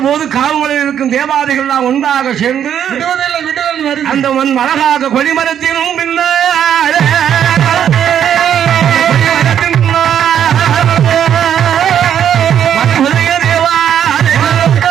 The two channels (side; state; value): left; quieter; 9.4 dB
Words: போது காவலில் இருக்கும் தேவாதைகள் எல்லாம் ஒன்றாக சேர்ந்து அந்த அழகாக கொடிமரத்தினும் பின்னால்